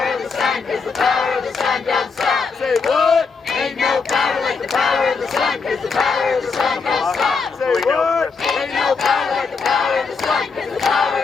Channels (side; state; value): right; quieter; 4.9 dB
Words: of the sun, cause the power of the sun don't stop. Say what? Ain't no power like the power of the sun, cause the power of the sun don't stop. Say what? Ain't no power like the power of the sun, cause the power